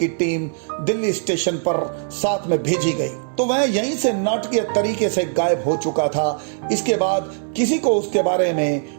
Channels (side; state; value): left; silent; digital silence